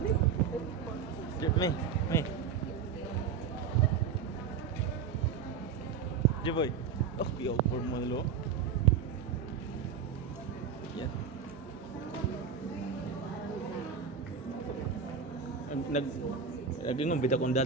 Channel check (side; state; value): left; quieter; 6.5 dB